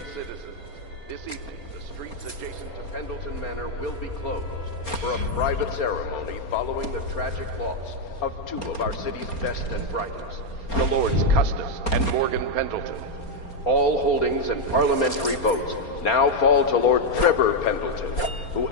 citizens, this evening the streets adjacent to Pendleton Manor will be closed for a private ceremony following the tragic loss of two of our city's best and brightest, the Lords Custis and Morgan Pendleton. All holdings and parliamentary votes now fall to Lord Trevor Pendleton, who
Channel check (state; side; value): late; right; 4.3 ms